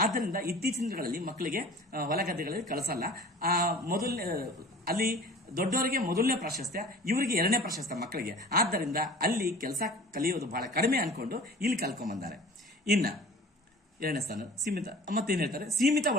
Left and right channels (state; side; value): normal; both; correlation 0.43